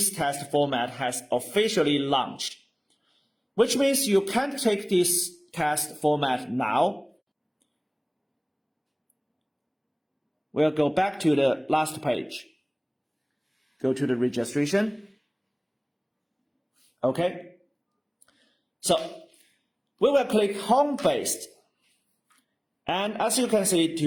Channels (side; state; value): both; identical; correlation 1.00